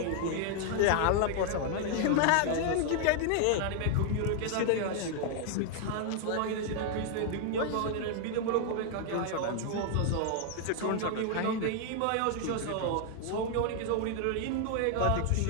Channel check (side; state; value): both; different; correlation 0.00